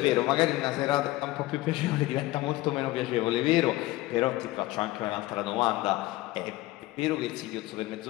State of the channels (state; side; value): quieter; right; 18.3 dB